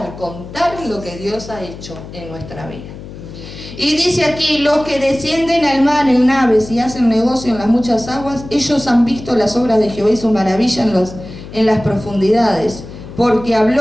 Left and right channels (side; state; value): left; noise; hum, 14 dB below the sound